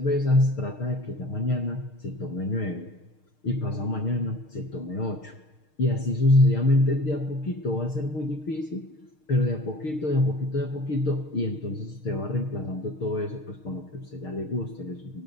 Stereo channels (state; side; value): late; right; 6.5 ms